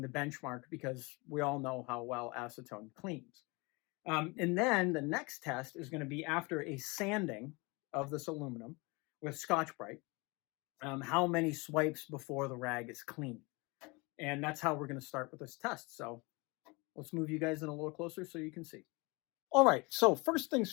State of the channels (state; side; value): quieter; right; 26.8 dB